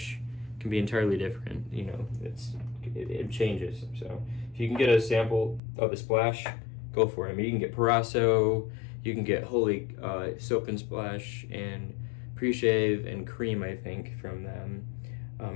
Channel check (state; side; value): drops out; right; at 5.6 s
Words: can be entirely different. You know, it changes. So if you can get a sample of the Splash, go for it. I mean, you can get Parasso, you can get Holy Soap and Splash and Pre-Shave and Cream, I think, from them.